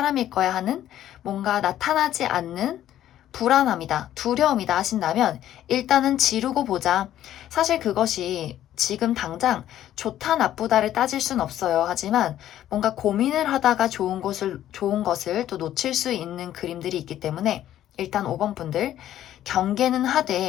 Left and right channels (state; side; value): quieter; right; 12.1 dB